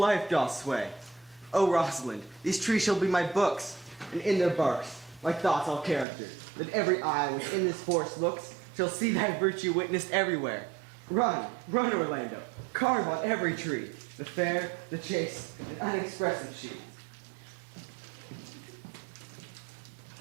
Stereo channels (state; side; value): drops out; left; at 6.1 s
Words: doth sway. O Rosalind, these trees shall be my books, and in their barks my thoughts all characters, that every eye which in this forest looks shall see thy virtue witnessed everywhere. Run, run, Orlando, carve on every tree the fair, the chaste, and unexpressive she.